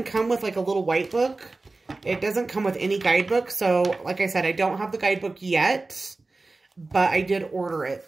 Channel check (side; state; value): left; quieter; 3.4 dB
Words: come with like a little white book. It doesn't come with any guidebook. So like I said, I don't have the guidebook yet, but I did order